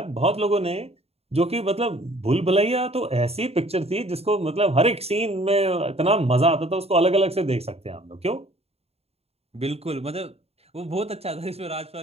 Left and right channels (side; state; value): left; late; 0.29 ms